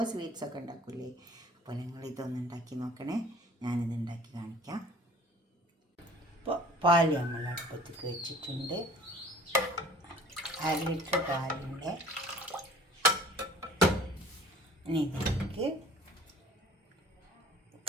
സ്വീറ്റ്സൊക്കെ ഉണ്ടാക്കൂലേ? അപ്പോൾ നിങ്ങൾ ഇതൊന്ന് ഉണ്ടാക്കി നോക്കണേ. ഞാനിത് ഉണ്ടാക്കി കാണിക്കാം. ഇപ്പോൾ പാല് നമ്മൾ അടുപ്പത്തേക്ക് വെച്ചിട്ടുണ്ട്. 1/2 ലിറ്റർ പാലുണ്ട്. ഇനി ഇതിലേക്ക്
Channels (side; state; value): both; normal; correlation 0.49